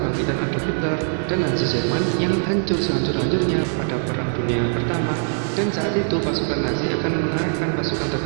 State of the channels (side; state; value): left; silent; digital silence